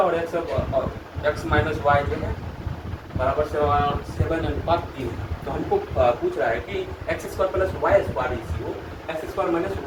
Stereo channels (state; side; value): identical; both; correlation 1.00